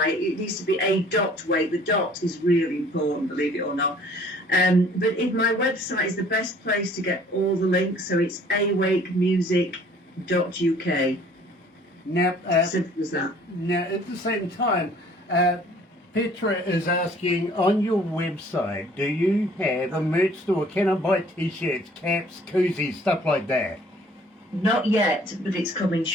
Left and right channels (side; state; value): both; normal; correlation 0.55